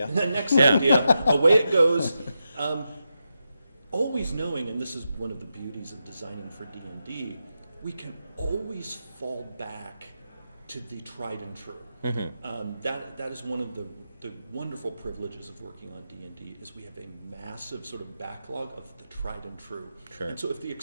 Next idea. Away it goes. Always knowing, and this is one of the beauties of designing for D&D, we can always fall back to the tried and true. That is one of the wonderful privileges of working on D&D is we have a massive sort of backlog of the tried and true. Sure. And so if the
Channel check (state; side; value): inverted; both; correlation -0.87